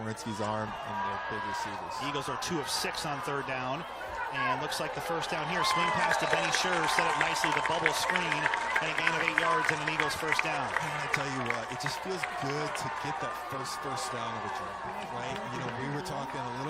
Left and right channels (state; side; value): identical; both; correlation 1.00